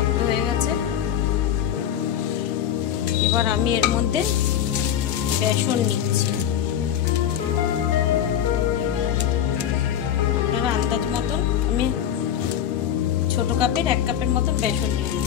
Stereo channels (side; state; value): right; quieter; 10.0 dB